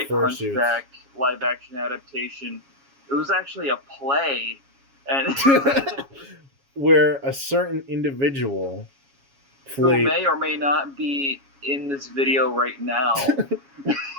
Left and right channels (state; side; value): late; left; 7.2 ms